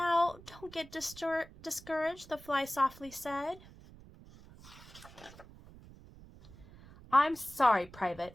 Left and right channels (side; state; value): right; noise; rumble, 20 dB below the sound